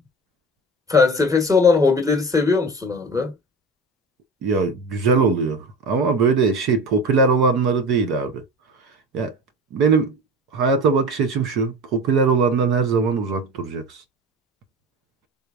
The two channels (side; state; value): both; normal; correlation 0.32